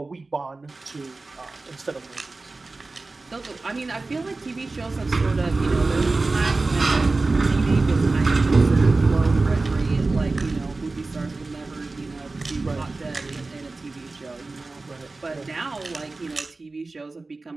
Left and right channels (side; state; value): left; quieter; 3.5 dB